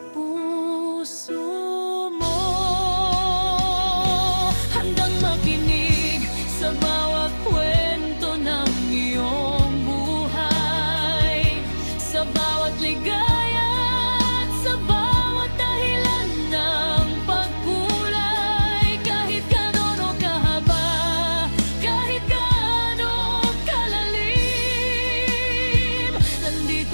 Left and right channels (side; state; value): both; inverted; correlation -1.00